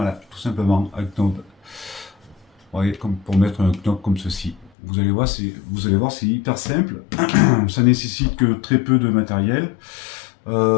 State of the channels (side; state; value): right; drops out; at 4.7 s